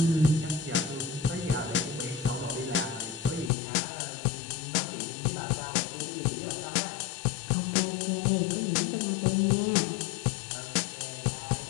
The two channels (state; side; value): drops out; right; at 3.5 s